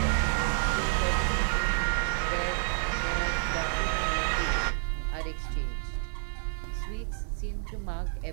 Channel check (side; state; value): left; silent; digital silence